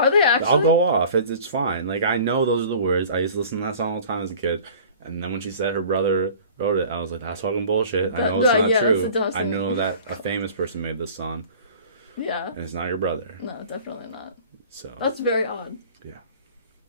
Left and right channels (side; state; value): both; inverted; correlation -0.45